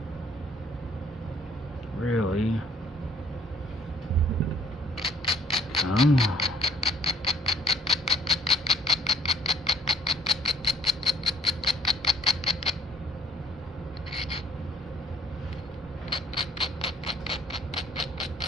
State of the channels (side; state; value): both; normal; correlation 0.61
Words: Really. Come on.